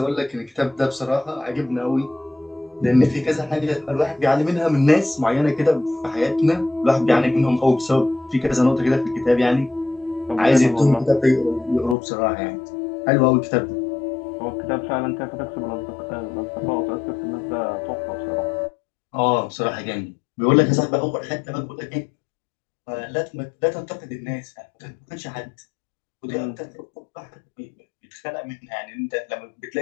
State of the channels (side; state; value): right; drops out; at 12.0 s